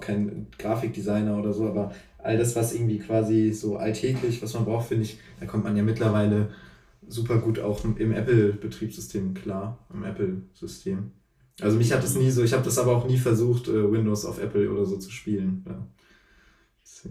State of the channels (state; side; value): identical; both; correlation 1.00